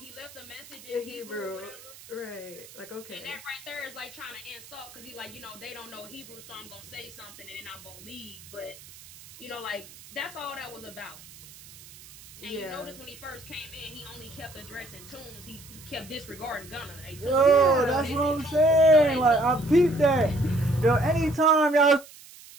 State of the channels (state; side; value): noise; right; hiss, 19 dB below the sound